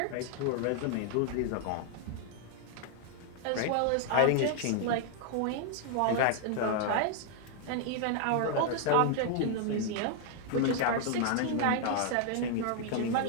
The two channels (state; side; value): different; both; correlation 0.00